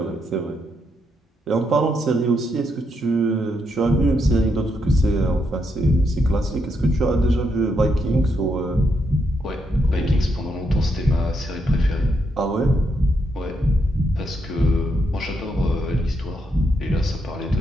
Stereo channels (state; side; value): normal; both; correlation 0.79